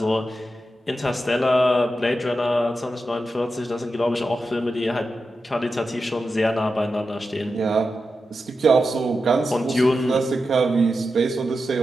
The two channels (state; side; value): normal; both; correlation 0.90